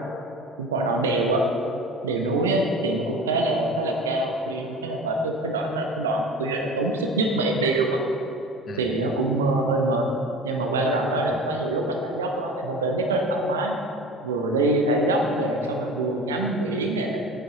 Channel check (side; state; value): both; normal; correlation 0.35